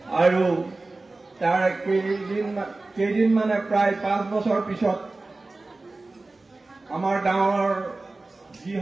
আৰু তাৰ কেইদিন মানে প্ৰায় 5 বছৰ পিছত আমাৰ গাঁৱৰ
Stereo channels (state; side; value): quieter; left; 3.3 dB